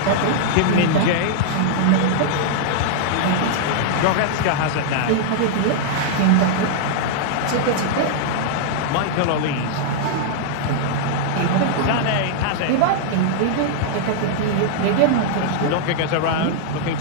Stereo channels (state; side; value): different; both; correlation -0.01